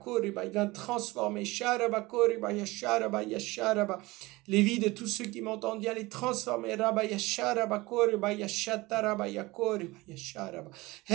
Viens transformer les vies de tous ceux qui m'entendent, viens les transformer. Viens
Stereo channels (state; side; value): quieter; left; 21.4 dB